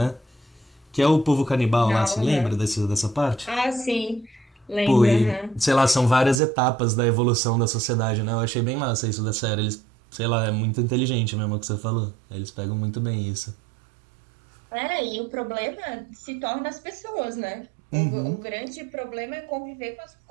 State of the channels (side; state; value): left; drops out; at 6.4 s